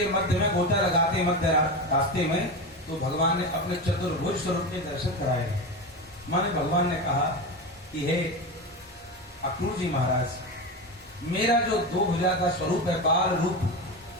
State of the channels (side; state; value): both; normal; correlation 0.21